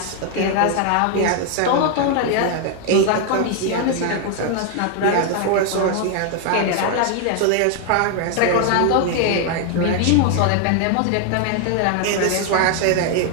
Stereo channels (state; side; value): different; both; correlation 0.00